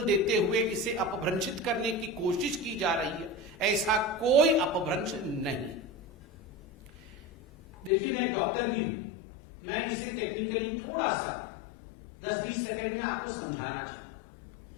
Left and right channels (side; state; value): right; drops out; at 7.9 s